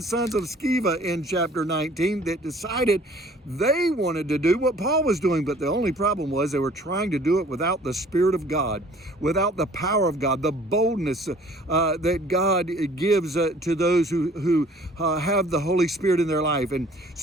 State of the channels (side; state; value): both; normal; correlation 0.53